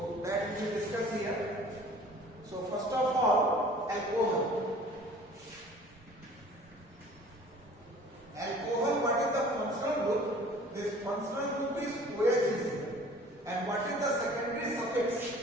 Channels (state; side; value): normal; both; correlation 0.48